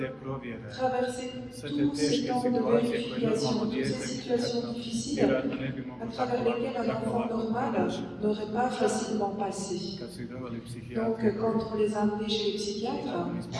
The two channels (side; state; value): both; identical; correlation 1.00